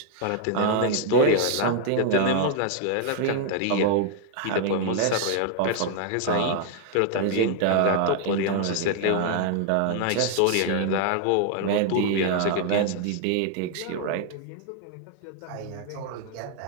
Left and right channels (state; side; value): different; both; correlation 0.00